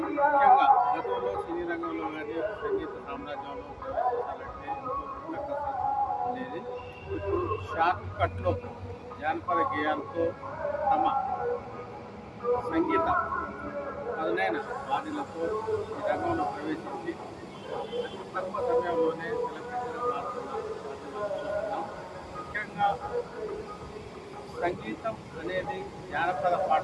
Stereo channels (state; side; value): identical; both; correlation 1.00